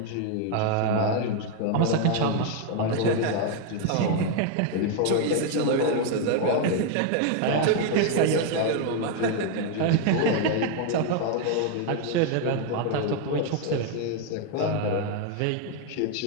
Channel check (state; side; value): different; both; correlation 0.00